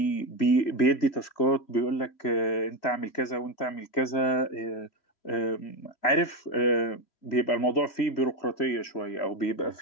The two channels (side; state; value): right; late; 3.1 ms